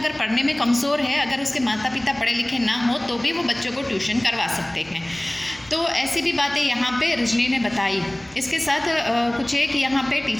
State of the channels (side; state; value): right; noise; hum, 29 dB below the sound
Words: पढ़ने में कमज़ोर है, अगर उसके माता पिता पढ़े लिखे ना हो तो भी वो बच्चों को ट्यूशन करवा सकते हैं। तो ऐसी भी बातें यहाँ पे रजनी ने बताई। इसके साथ कुछ एक यहाँ पे